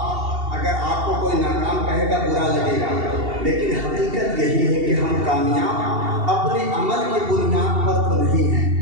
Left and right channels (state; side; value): late; left; 2.7 ms